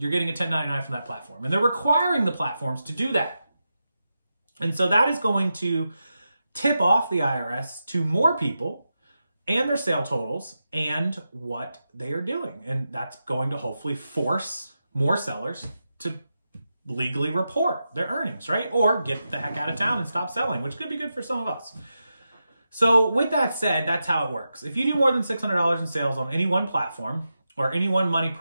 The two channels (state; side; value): inverted; both; correlation -0.89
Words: getting a 1099 from that platform. And they're requiring the platforms to do that. And so that is going to tip off the IRS to more people and their sale totals and what they are doing. And that's going to hopefully force more sellers to legally report their earnings, right? Or get the heck out of town and stop selling, which could be good for some of us. So with that said, that's how it works. If you do more than $600 in sales on any one platform or any one money